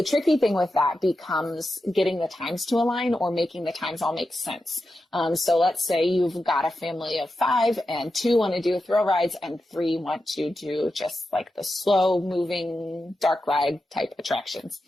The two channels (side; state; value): both; normal; correlation 0.90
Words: tricky thing with that becomes getting the times to align or making the times all make sense. So let's say you've got a family of 5 and 2 want to do thrill rides and 3 want to do just like the slow moving dark ride type attractions.